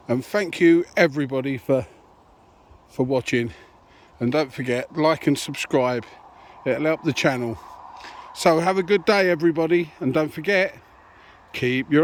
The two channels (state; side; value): identical; both; correlation 1.00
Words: and thank you everybody for watching. And don't forget, like and subscribe, it'll help the channel. So have a good day everybody, and don't forget, keep